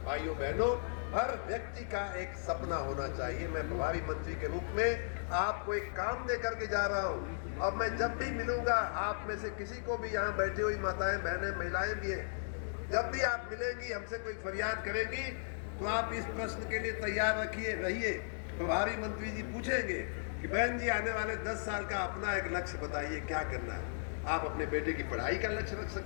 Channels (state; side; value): silent; right; digital silence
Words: भाइयों बहनों, हर व्यक्ति का एक सपना होना चाहिए। मैं प्रभारी मंत्री के रूप में आपको एक काम दे करके जा रहा हूँ और मैं जब भी मिलूंगा आप में से किसी को भी, यहाँ बैठी हुई माताएं, बहनें, महिलाएं भी हैं, जब भी आप मिलेंगी, हमसे कोई फरियाद करेंगी तो आप इस प्रश्न के लिए तैयार रहिए। प्रभारी मंत्री जी पूछेंगे कि बहन जी आने वाले 10 साल का अपना एक लक्ष्य बताइए, क्या करना है। आप अपने बेटे की पढ़ाई का लक्ष्य रख